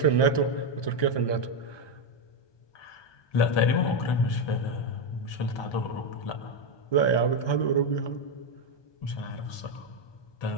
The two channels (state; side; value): late; right; 1.2 ms